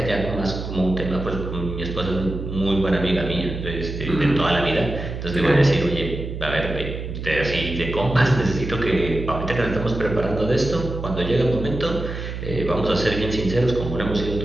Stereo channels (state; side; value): noise; right; hum, 6 dB below the sound